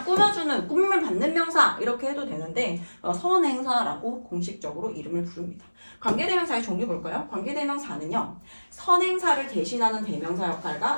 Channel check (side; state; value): both; inverted; correlation -1.00